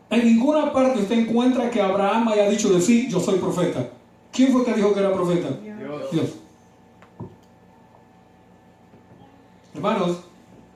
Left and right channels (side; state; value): both; identical; correlation 1.00